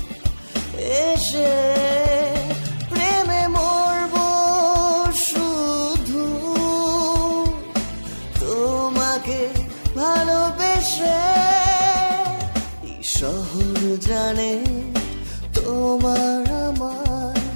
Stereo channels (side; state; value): both; inverted; correlation -1.00